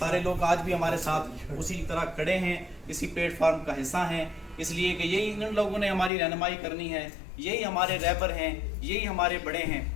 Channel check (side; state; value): right; drops out; at 6.1 s